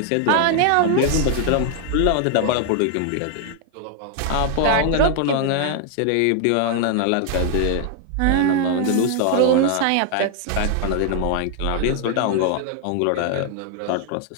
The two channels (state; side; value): different; both; correlation 0.00